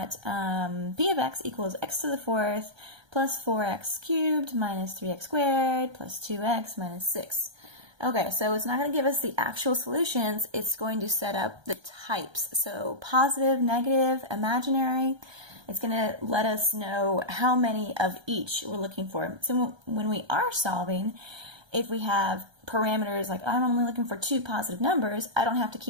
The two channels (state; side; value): late; left; 1.3 ms